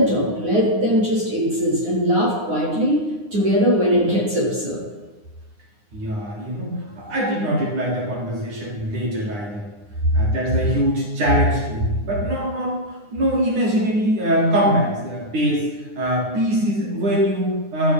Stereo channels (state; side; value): late; left; 9.7 ms